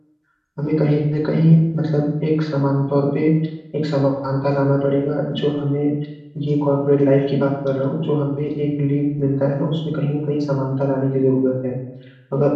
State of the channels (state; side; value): identical; both; correlation 1.00